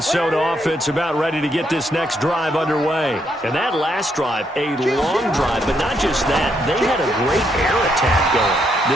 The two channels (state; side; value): normal; both; correlation 0.76